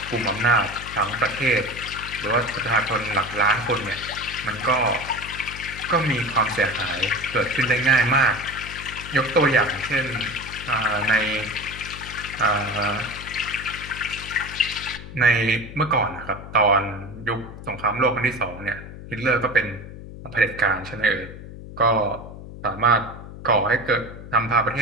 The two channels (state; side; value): noise; left; hum, 13 dB below the sound